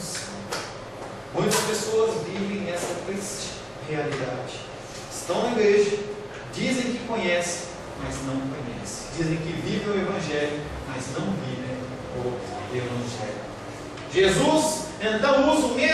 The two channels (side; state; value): both; identical; correlation 1.00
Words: Muitas pessoas vivem essa triste realidade. Estão na igreja, dizem que conhecem, mas não conhecem. Dizem que vivem o Evangelho, mas não vivem o Evangelho. Jesus então usa o